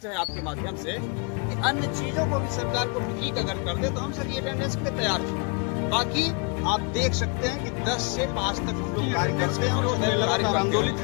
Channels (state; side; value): quieter; right; 35.0 dB